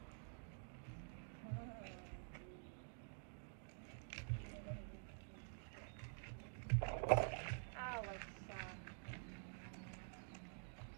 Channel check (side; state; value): left; silent; digital silence